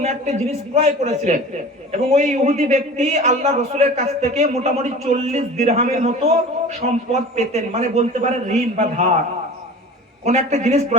একটা জিনিস ক্রয় করেছিলেন এবং ওই ইহুদি ব্যক্তি আল্লাহ রাসূলের কাছ থেকে মোটামুটি 40 দিরহামের মতো সম্পদ পেতেন, মানে বলতে পারেন ঋণ বা ধার। কোন একটা জিনিস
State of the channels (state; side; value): normal; both; correlation 0.38